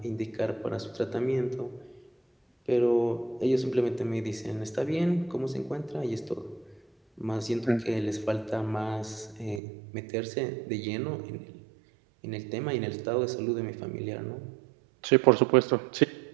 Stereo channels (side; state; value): left; drops out; at 9.6 s